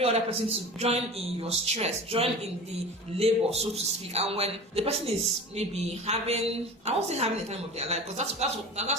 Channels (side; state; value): both; normal; correlation 0.35